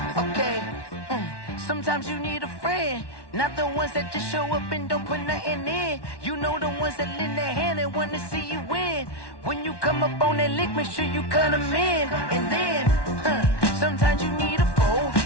Okay. Sometimes you need a friend, not the ones that just show up and don't put nothing in. You know the ones that lend their hand and want to see you win. When you come up on that lick, make sure you cut them in. And then, sometimes you need a foe,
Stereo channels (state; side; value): late; right; 1.1 ms